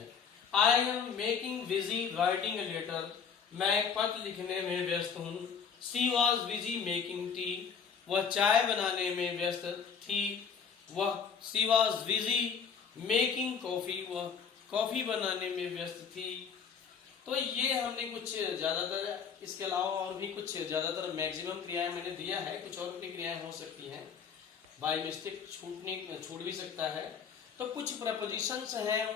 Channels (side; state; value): right; quieter; 6.6 dB